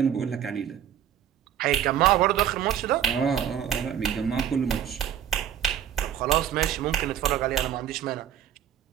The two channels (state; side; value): quieter; left; 9.6 dB